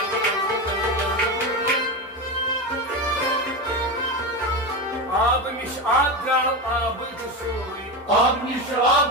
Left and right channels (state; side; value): normal; both; correlation 0.18